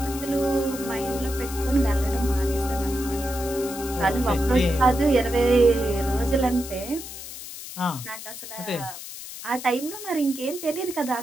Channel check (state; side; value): noise; left; hiss, 11 dB below the sound